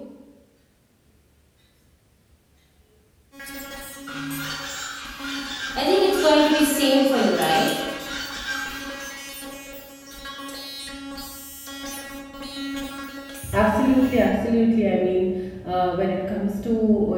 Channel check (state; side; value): identical; both; correlation 1.00